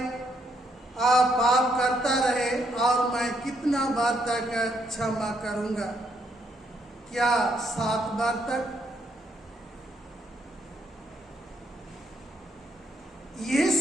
पाप करता रहे और मैं कितना बार तक क्षमा करूंगा? क्या 7 बार तक?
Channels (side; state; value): both; normal; correlation 0.74